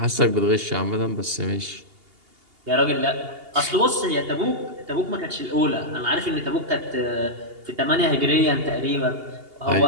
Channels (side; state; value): left; late; 2.8 ms